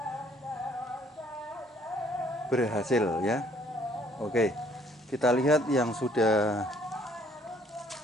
berhasil ya. Oke, kita lihat yang sudah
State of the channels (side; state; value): both; normal; correlation 0.62